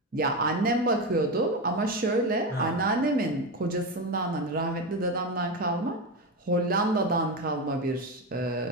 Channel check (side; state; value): both; normal; correlation 0.16